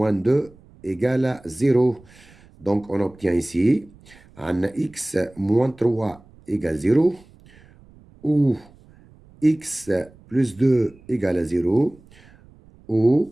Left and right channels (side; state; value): right; noise; rumble, 26 dB below the sound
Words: 2 égale à 0. Donc, on obtient ici, un x moins 3 égale 0, ou x plus 2 égale à 0,